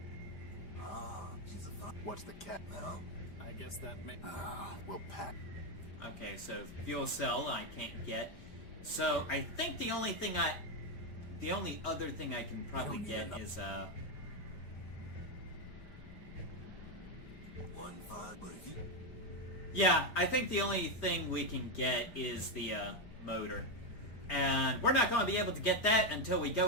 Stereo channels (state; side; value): late; right; 5.0 ms